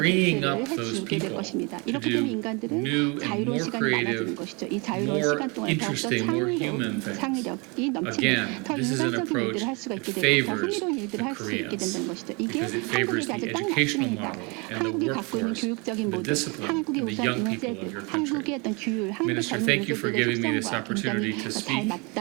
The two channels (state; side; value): quieter; left; 30.0 dB